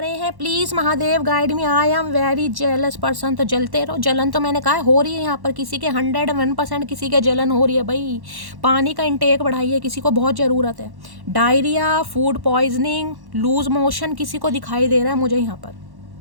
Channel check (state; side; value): late; left; 1.1 ms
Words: हैं, please Mahadev guide me. I am very jealous person. तो जलते रहो, जलन तो मैंने कहा हो रही है यहाँ पर किसी के 101%, किसी के जलन हो रही है भाई। पानी का इंटेक बढ़ाइए, किसी को बहुत ज़रूरत है। Diarrhoea, food poisoning, loose motion किसी को दिखाई दे रहा है मुझे यहाँ पर।